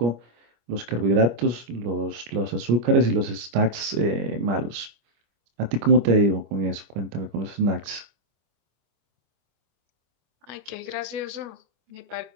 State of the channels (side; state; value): left; late; 25 ms